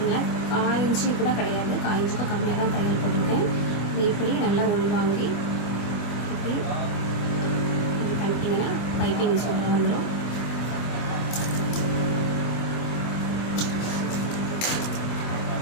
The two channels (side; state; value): right; late; 24 ms